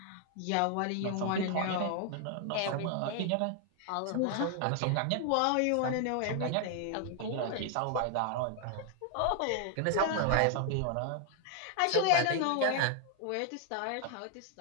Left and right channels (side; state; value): both; different; correlation 0.00